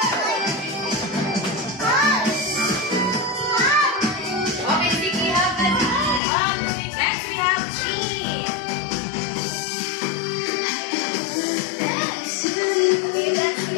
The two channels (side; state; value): right; drops out; at 6.2 s